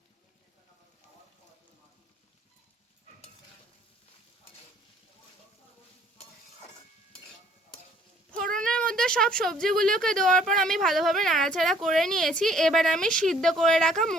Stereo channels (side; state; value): both; normal; correlation 0.59